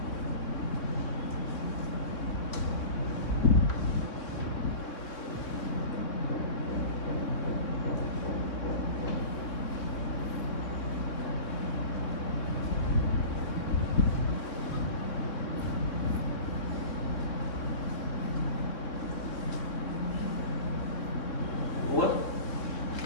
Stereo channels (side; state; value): right; late; 3.6 ms